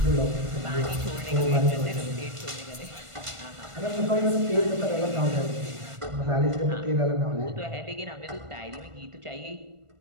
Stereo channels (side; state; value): left; late; 1.5 ms